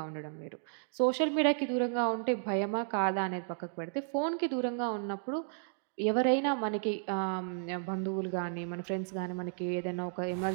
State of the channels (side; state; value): left; silent; digital silence